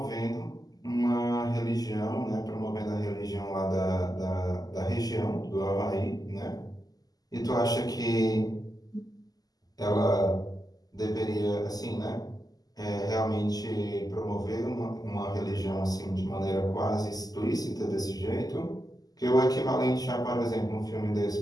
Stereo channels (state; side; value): late; right; 0.18 ms